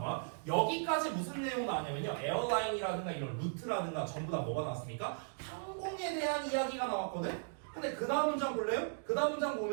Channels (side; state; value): left; silent; digital silence